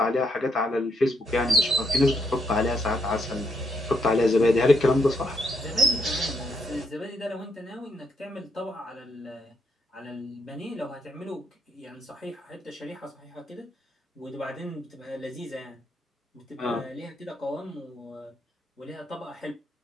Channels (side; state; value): both; normal; correlation 0.75